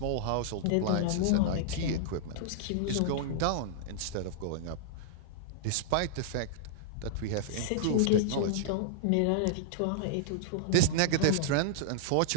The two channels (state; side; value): different; both; correlation -0.02